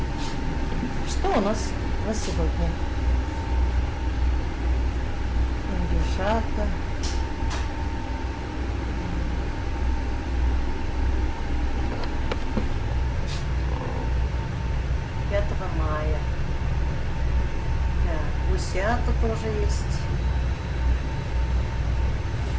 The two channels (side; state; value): both; identical; correlation 1.00